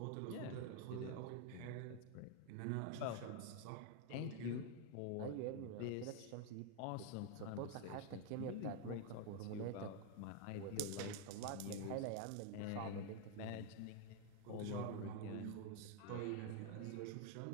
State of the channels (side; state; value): both; different; correlation 0.00